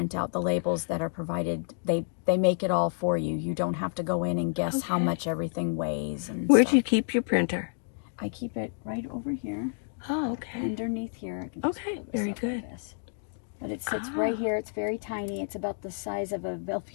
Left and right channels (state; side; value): silent; right; digital silence